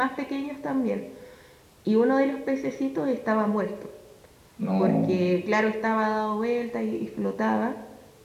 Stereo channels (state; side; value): identical; both; correlation 1.00